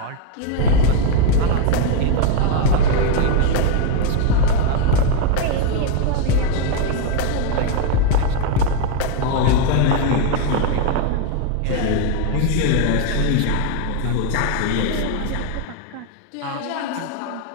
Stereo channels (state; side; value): different; both; correlation 0.01